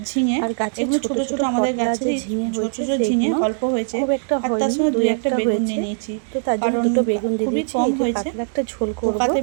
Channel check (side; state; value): left; silent; digital silence